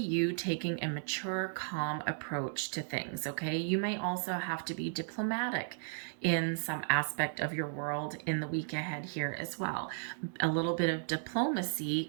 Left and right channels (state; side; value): silent; left; digital silence